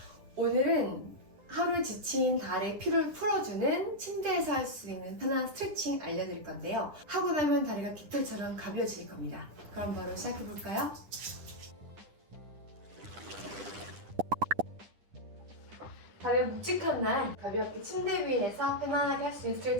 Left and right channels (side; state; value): left; late; 10 ms